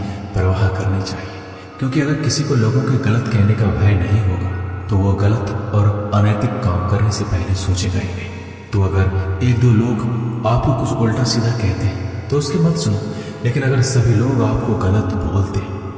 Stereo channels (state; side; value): identical; both; correlation 1.00